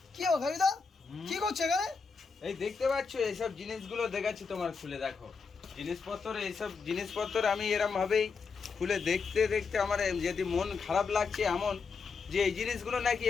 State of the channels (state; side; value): quieter; right; 5.1 dB